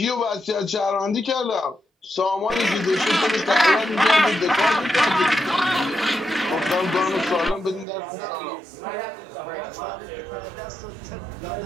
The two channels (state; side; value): drops out; left; at 7.9 s